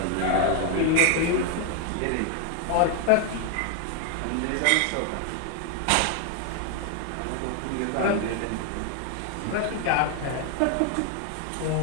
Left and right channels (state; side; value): different; both; correlation 0.00